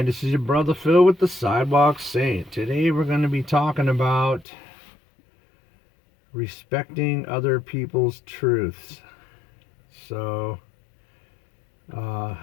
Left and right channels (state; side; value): drops out; right; at 4.5 s